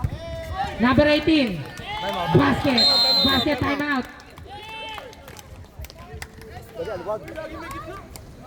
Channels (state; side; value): identical; both; correlation 1.00